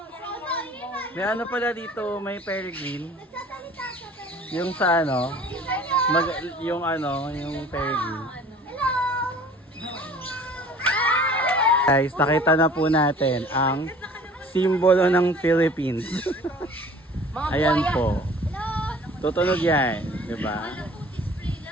May ano pala dito, may peregrine. Nagsasalita siya pero Yung sa ano, hello. yung ano, yung peregrine. Hello. Guys, nakita na po natin ang simbolo ng Philippines. Mga Ayan buhaya. po. Hello. Tutunog yan, di ba?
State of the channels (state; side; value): normal; both; correlation 0.48